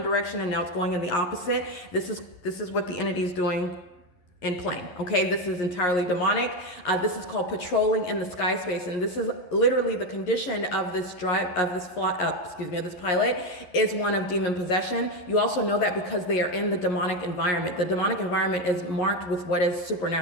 direction, and now it's going in the opposite. This is what the entity is doing in plane. Okay, this is entirely demonic. This is called patrolling in the sky space, and this is literally the condition of this this pilot is one of demon possession. You also know that because they are in the demonic environment. The demonic environment is marked with what is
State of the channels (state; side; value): late; right; 11 ms